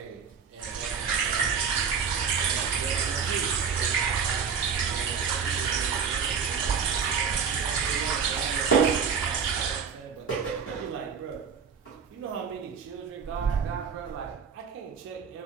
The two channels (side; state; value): left; quieter; 6.3 dB